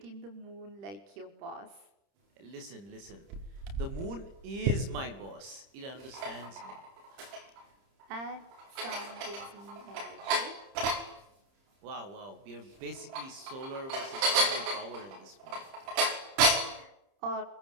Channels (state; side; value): late; left; 30 ms